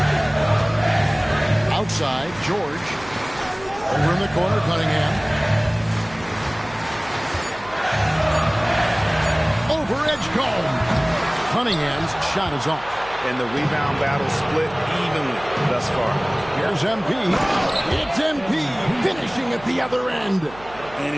Outside, George. Over in the corner, Cunningham. Over Edgecombe. Cunningham's shot is off. And the rebound battle split evenly thus far. Here's MP. It's MP finishing at the other end.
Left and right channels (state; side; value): noise; right; hum, 20 dB below the sound